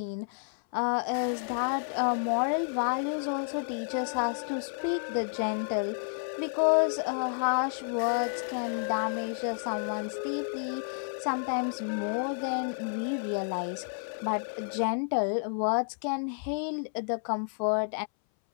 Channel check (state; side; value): silent; right; 58 dB below the other